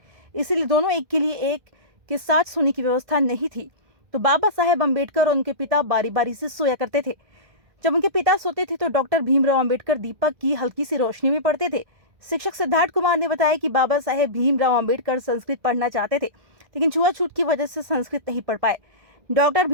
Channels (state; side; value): late; left; 1.6 ms